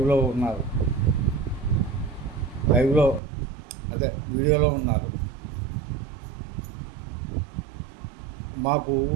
ఉన్నారు. వీడియోలో ఉన్నారు. మాకు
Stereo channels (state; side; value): drops out; left; at 3.2 s